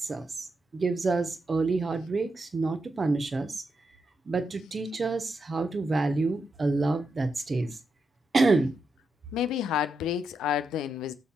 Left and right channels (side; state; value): both; normal; correlation 0.84